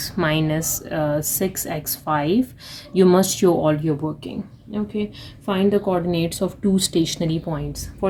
minus 6x5. You must show all your working. Okay, find the coordinates of two stationary points.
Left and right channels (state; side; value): identical; both; correlation 1.00